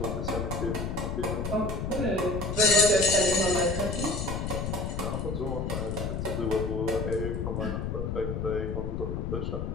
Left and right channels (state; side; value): noise; left; rumble, 2 dB below the sound